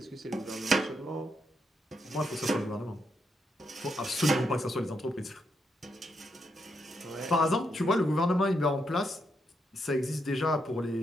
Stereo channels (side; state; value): both; normal; correlation 0.80